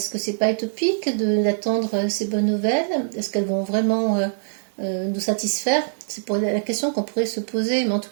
que c'est pas utopique d'attendre ces bonnes nouvelles? Est-ce qu'elles vont vraiment nous satisfaire? C'est pour la question qu'on pourrait se poser. Mais en tout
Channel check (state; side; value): silent; left; 63 dB below the other